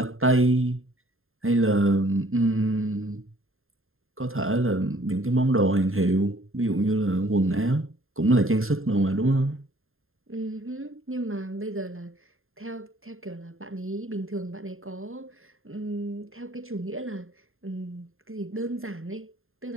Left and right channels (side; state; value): left; late; 0.61 ms